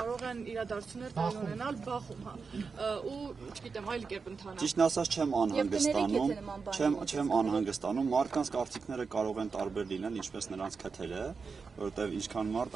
են իրադարձություններ տեղի ունենալ բախում, հա, ու չգիտեմ, այլ կերպ ընթանալ։ Ճիշտն ասած չեմ անհանգստանում, մարդկանց կարծիքները կարող են տարբեր լինել, ինչպես նրանց քթերը, որովհետև ինչքան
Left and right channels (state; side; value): quieter; left; 5.0 dB